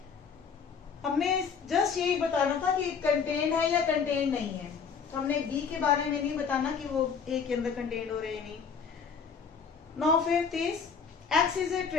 हमने जस्ट यही बताना था कि कंटेंट है या कंटेंट नहीं है, तो हमने B के बारे में नहीं बताना कि वो A के अंदर कंटेंट हो रहे हैं नहीं। Now 5th is x is a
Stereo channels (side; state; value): right; quieter; 6.1 dB